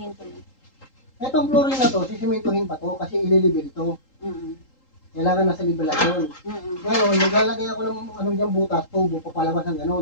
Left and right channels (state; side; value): late; right; 3.8 ms